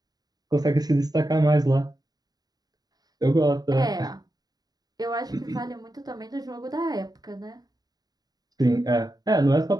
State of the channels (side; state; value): left; late; 0.19 ms